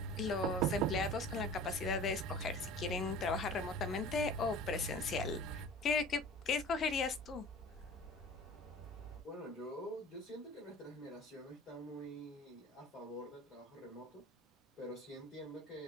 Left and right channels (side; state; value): both; normal; correlation 0.41